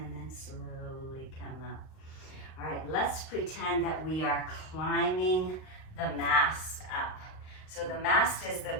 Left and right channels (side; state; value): right; late; 38 ms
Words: then slowly come up. All right, let's pretend that we are climbing the mast up. So the mast is the